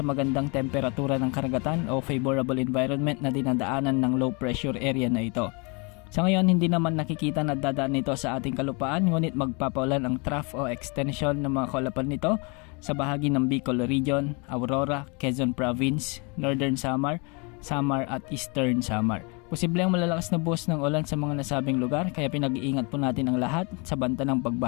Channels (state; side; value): quieter; right; 31.8 dB